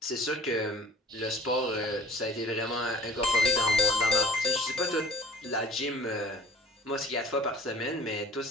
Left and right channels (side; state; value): both; normal; correlation 0.46